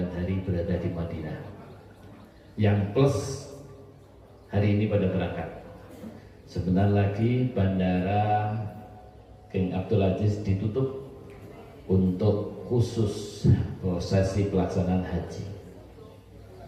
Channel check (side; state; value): both; identical; correlation 1.00